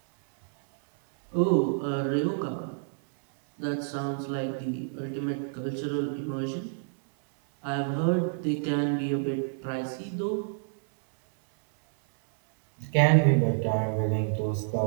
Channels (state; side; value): silent; left; 59 dB below the other